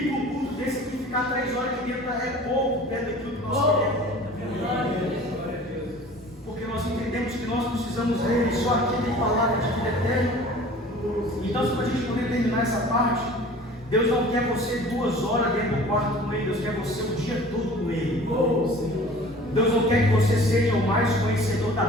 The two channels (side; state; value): both; normal; correlation 0.45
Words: entendemos que nós precisamos dele, só aqui tem palavra de vida eterna. Então, se para a gente poder terminar essa parte, Deus não quer você 2 horas dentro do quarto com Ele, Deus quer você o dia todo com Ele. Deus não quer que você seja o mais conhecedor da